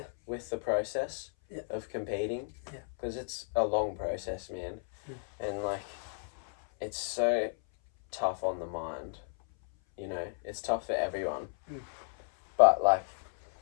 with the process of competing, because it's a long process, man. And like, it's so tough on the mind, you know. It's tough for everyone. But like,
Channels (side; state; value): right; silent; 56 dB below the other